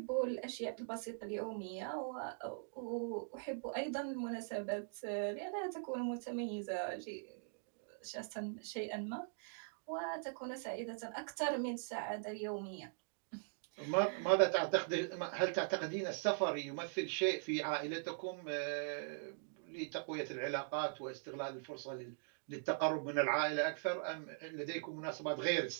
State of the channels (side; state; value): left; silent; digital silence